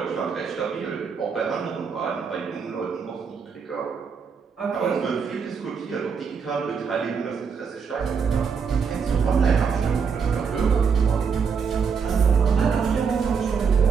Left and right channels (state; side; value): quieter; left; 6.0 dB